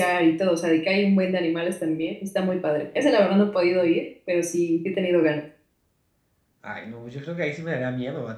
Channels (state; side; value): identical; both; correlation 1.00